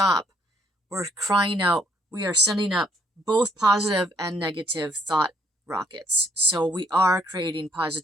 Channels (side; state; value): both; normal; correlation 0.67